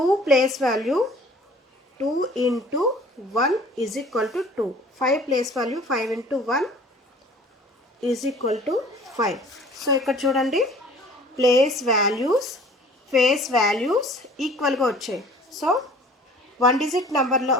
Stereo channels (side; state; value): both; normal; correlation 0.49